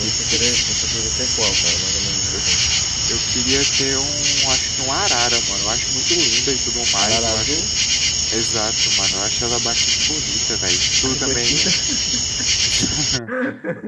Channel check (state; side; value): identical; both; correlation 1.00